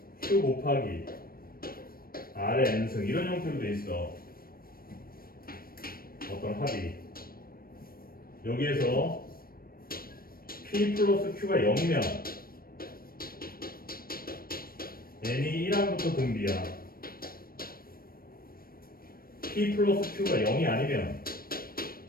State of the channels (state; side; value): late; right; 0.43 ms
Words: Q 곱하기 R의 n승 이런 형태로 돼 있어. 어떤 합이. 여기에서 P 플러스 Q가 0이면 n이 1항부터 등비야. P 플러스 Q가 0이 아니면